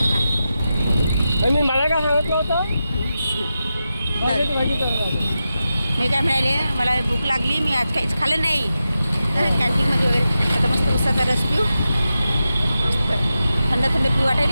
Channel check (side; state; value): both; inverted; correlation -0.90